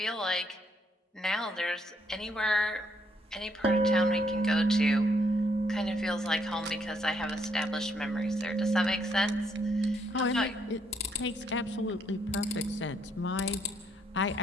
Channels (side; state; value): both; normal; correlation 0.72